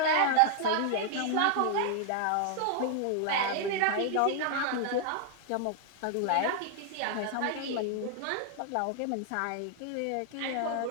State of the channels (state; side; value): different; both; correlation 0.00